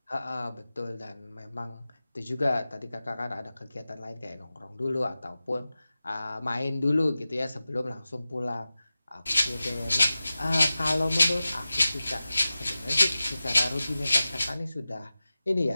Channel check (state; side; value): inverted; both; correlation -0.95